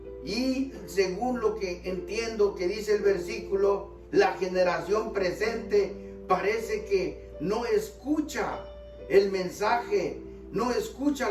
y según lo que entiendo que dice el versículo, la generación presente parece que no escucha el mensaje, no escucha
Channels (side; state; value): both; identical; correlation 1.00